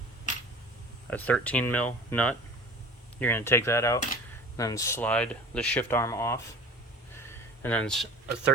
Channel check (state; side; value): normal; both; correlation 0.41